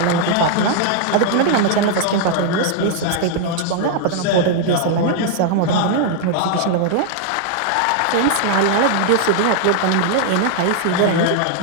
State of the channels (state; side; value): different; both; correlation -0.01